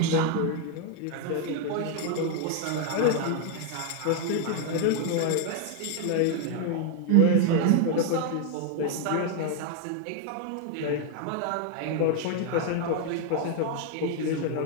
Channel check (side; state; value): both; different; correlation 0.00